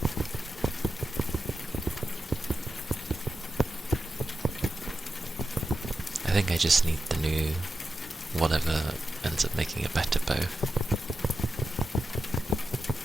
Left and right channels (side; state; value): both; normal; correlation 0.90